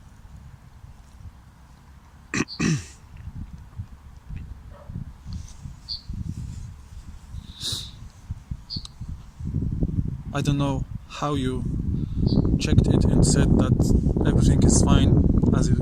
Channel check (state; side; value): identical; both; correlation 1.00